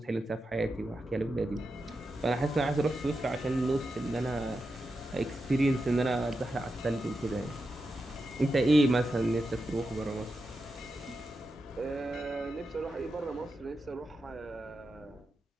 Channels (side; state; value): both; normal; correlation 0.89